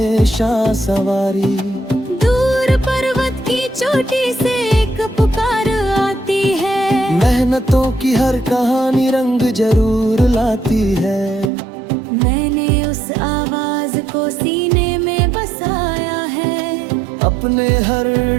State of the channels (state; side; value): drops out; left; at 11.5 s